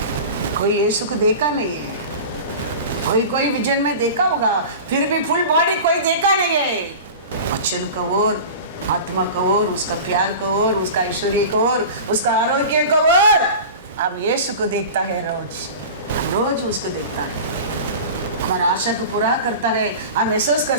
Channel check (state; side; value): inverted; both; correlation -0.34